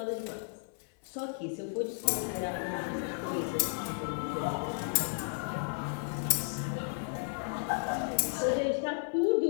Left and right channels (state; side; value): silent; right; 55 dB below the other